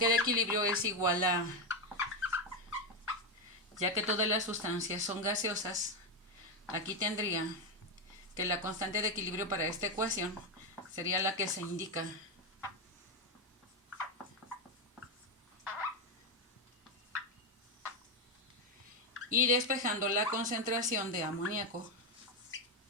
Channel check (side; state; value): both; normal; correlation 0.07